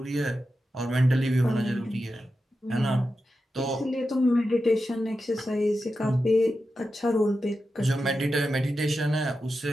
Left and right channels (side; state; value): both; normal; correlation 0.90